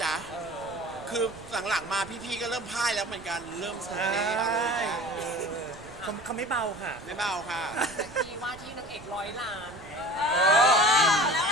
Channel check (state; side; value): noise; right; rumble, 20 dB below the sound